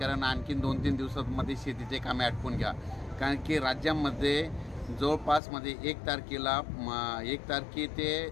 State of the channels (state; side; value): drops out; right; at 5.4 s